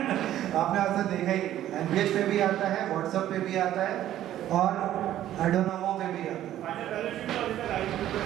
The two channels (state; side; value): quieter; left; 12.5 dB